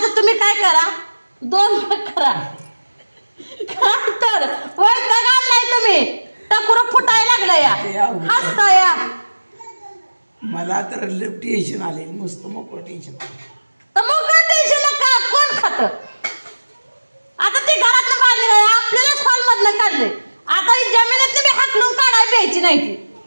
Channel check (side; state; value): both; inverted; correlation -1.00